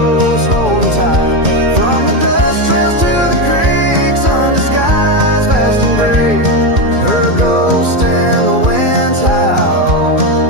holding tight. From the dust trails to the creeks, under skies vast and gray, her ghost in the winds howl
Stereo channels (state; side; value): late; left; 2.3 ms